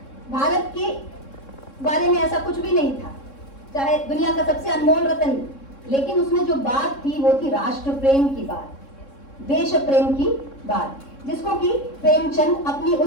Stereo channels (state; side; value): late; right; 3.6 ms